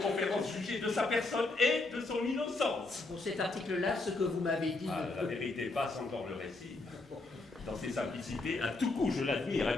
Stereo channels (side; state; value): right; quieter; 3.2 dB